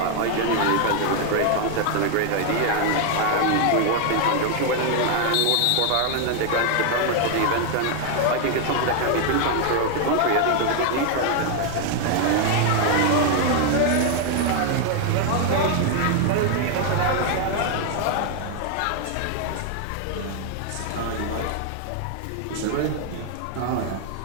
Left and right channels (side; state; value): both; different; correlation 0.00